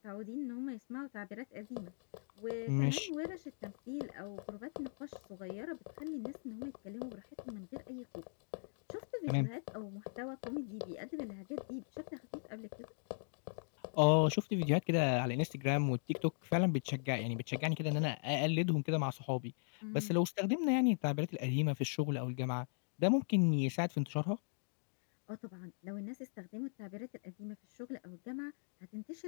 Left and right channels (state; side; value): silent; right; digital silence